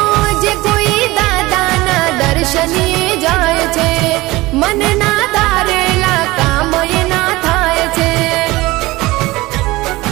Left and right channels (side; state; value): left; quieter; 20.2 dB